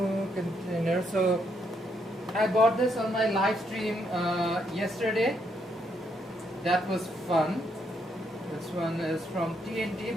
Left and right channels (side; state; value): both; normal; correlation 0.75